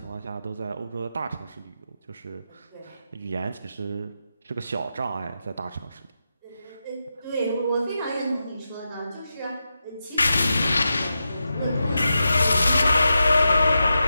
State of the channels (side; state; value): both; inverted; correlation -0.89